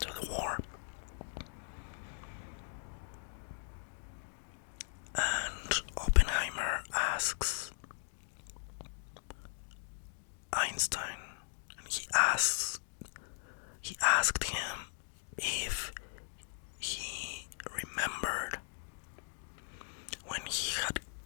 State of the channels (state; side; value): silent; right; digital silence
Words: the war. And Oppenheimer asks Einstein, and he asked him if he remembered when he had